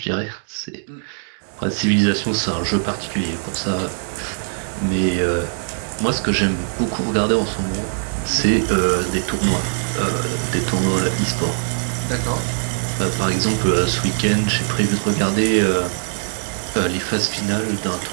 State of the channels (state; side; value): silent; left; 65 dB below the other